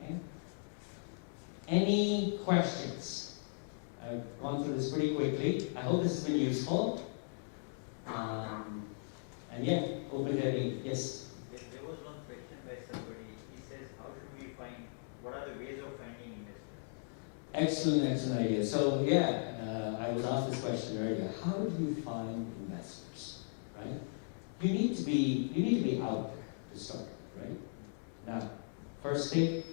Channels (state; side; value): silent; right; digital silence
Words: Any questions? I've gone through this pretty quickly. I hope this has been useful. And yeah, open to any. Yes? Excellent, excellent idea. So yeah, I was asked this question earlier. How do you find investors, right? You need to be out there to start with, right? Now, first thing,